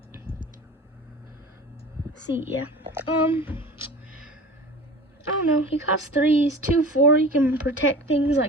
C, yeah. I don't know. He costs 3. He's 2/4. He can protect things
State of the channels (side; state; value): both; normal; correlation 0.38